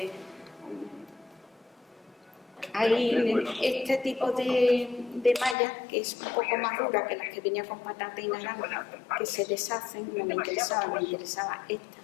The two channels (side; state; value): right; drops out; at 5.6 s